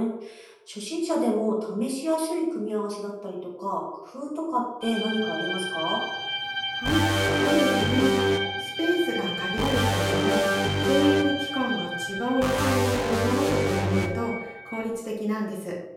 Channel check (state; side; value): identical; both; correlation 1.00